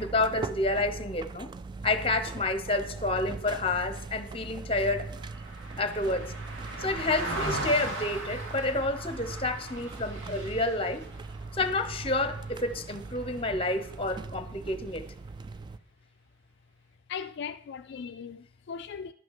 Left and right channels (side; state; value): both; normal; correlation 0.05